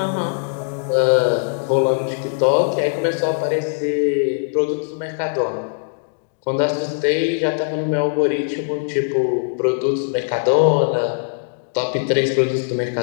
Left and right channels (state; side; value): silent; right; digital silence